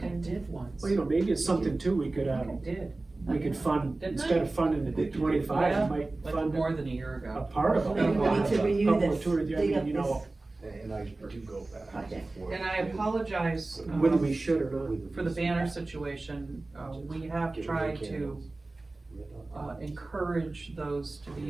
I agenda. did once. Well, you know, maybe it's something too, we could, I did, we could fund, Didn't instead I? of funding the 25, Yeah, we might like fund more than a year a ago. part of it. Maybe we need to renew Couple of this, tours, I dig mean, up you this know, And I do go back. project. forth. And I apologize, whether we should or not. for the banner situation, we have Get rid of tried to, candles. encourage those to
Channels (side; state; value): left; quieter; 3.1 dB